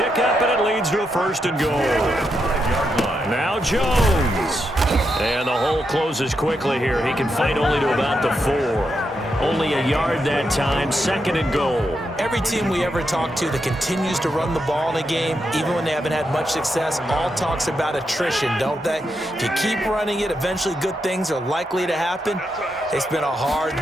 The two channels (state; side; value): normal; both; correlation 0.83